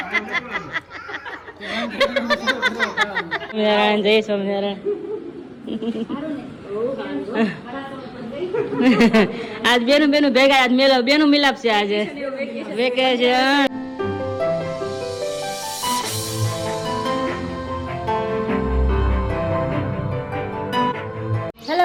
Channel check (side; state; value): both; identical; correlation 1.00